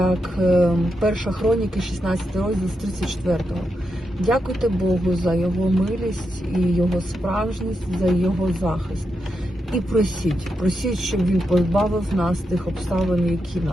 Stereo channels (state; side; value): normal; both; correlation 0.86